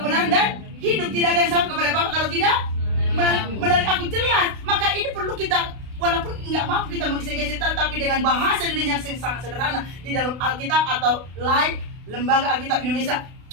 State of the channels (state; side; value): late; left; 32 ms